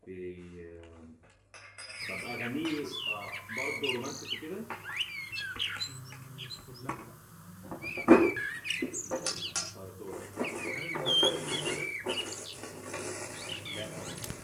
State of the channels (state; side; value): identical; both; correlation 1.00